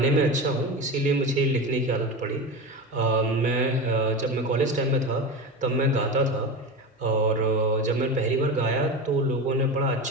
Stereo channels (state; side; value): normal; both; correlation 0.25